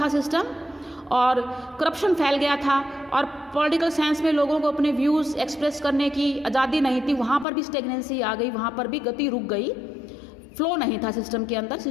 सिस्टम और करप्शन फैल गया था, और पॉलिटिकल साइंस में लोगों को अपने व्यूज़ एक्सप्रेस करने की आज़ादी नहीं थी, वहाँ पर भी स्टेगनेंसी आ गई, वहाँ पर भी गति रुक गई, फ्लो नहीं था सिस्टम के अंदर,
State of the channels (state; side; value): drops out; right; at 7.5 s